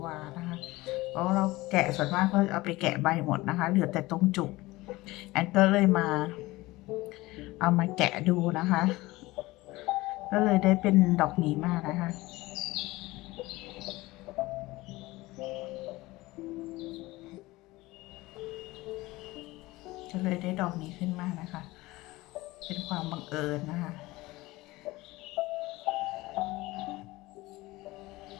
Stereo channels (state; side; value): quieter; right; 19.9 dB